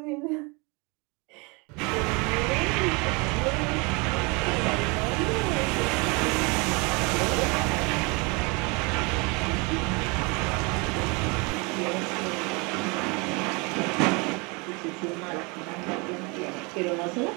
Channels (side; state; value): left; quieter; 29.2 dB